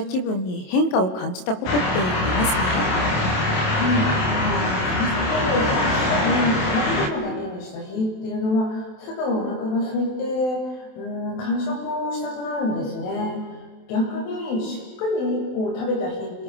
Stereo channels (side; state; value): right; late; 27 ms